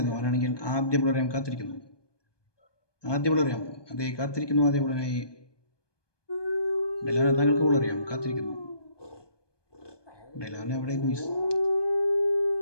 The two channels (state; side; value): late; right; 1.2 ms